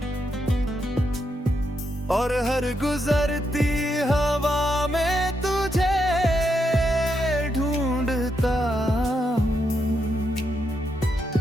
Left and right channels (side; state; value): both; normal; correlation 0.81